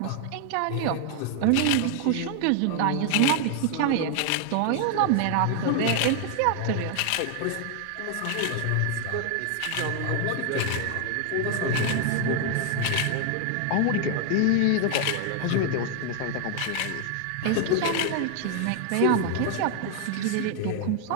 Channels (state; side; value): different; both; correlation 0.00